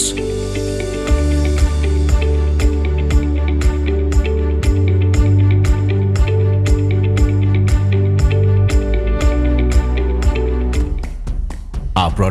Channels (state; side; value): identical; both; correlation 1.00